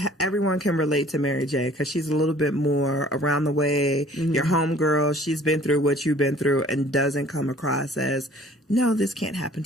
can relate to Mary J because she's a little bit more around the way. Your homegirl, she's been through what you've been through and doesn't come across as, no, this can't happen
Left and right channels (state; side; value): normal; both; correlation 0.52